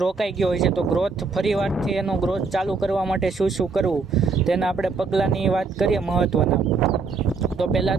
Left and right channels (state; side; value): quieter; left; 4.5 dB